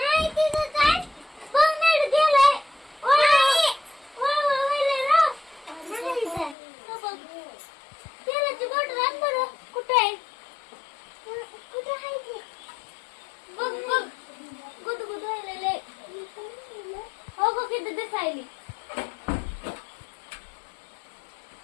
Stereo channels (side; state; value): right; drops out; at 6.6 s